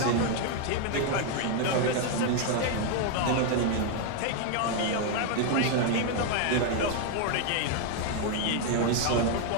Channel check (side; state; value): both; different; correlation 0.00